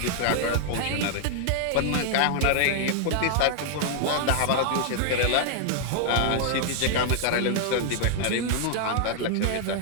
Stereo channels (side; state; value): both; different; correlation 0.00